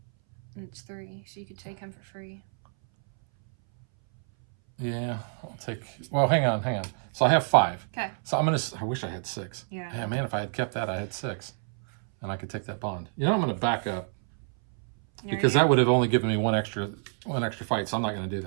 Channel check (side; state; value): left; silent; 59 dB below the other